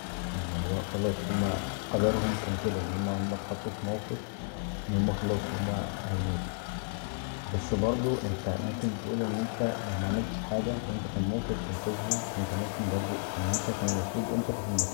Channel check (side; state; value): right; silent; digital silence